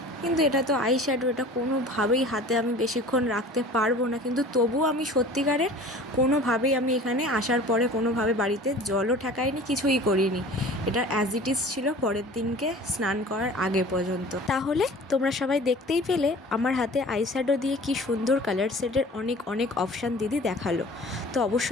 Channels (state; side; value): normal; both; correlation 0.43